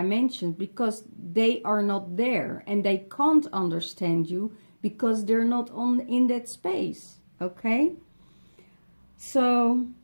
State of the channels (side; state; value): both; inverted; correlation -1.00